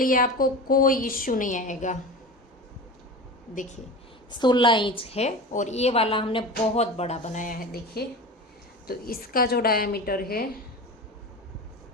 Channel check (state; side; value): normal; both; correlation 0.30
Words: आपको कोई इश्यू नहीं आएगा। देखिए 16 इंच है और ये वाला हमने बहुत बड़ा बनाया है। देखिए तो इसका जो डायमीटर है